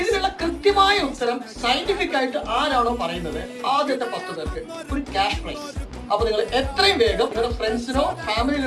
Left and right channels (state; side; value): identical; both; correlation 1.00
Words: ഇതിനുള്ള കൃത്യമായ ഉത്തരം സയന്റിഫിക് ആയിട്ട് ആരാണോ പറയുന്നത് ആദ്യത്തെ 10 പേർക്ക് ഒരു ക്യാഷ് പ്രൈസ്. അപ്പൊ നിങ്ങൾ എത്രയും വേഗം നിങ്ങളുടെ ഫ്രണ്ട്സിനോ